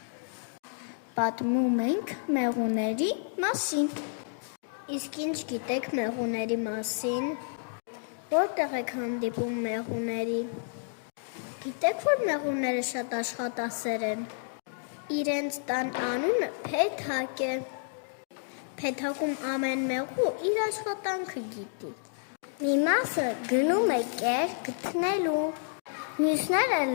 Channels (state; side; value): silent; right; digital silence